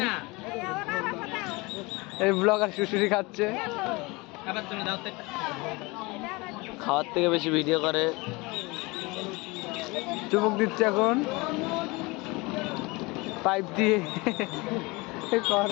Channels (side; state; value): right; quieter; 24.7 dB